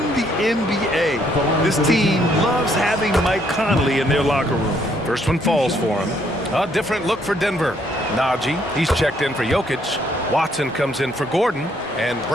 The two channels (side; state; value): both; normal; correlation 0.69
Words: the NBA. This team loves having Mike Conley in their locker room. First one falls for him. A different look for Denver. Najee, he's checked in for Jokic. Watson comes in for Gordon. And